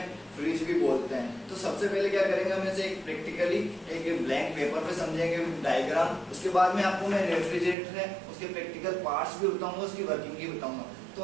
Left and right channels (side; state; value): left; drops out; at 7.8 s